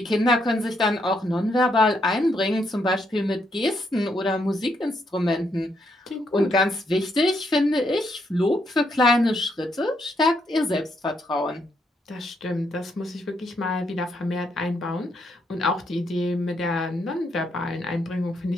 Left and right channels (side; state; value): both; normal; correlation 0.76